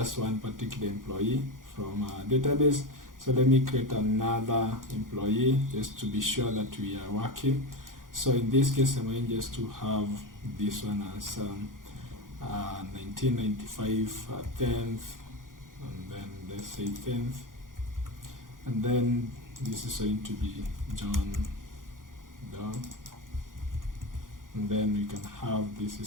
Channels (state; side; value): late; left; 0.90 ms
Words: one particular employee from our database. So let me create another employee just to be sure that we are working. So in this case, I'm going just to have this one as 1995 10th, and then let's say 10th, and then this is going to be John Doe, and then we can have this